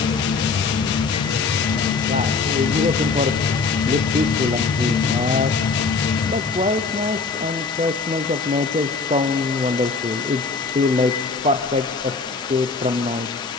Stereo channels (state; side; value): quieter; right; 4.6 dB